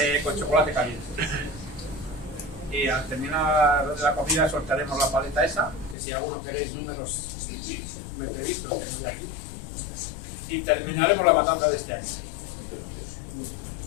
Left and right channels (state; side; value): drops out; right; at 6.0 s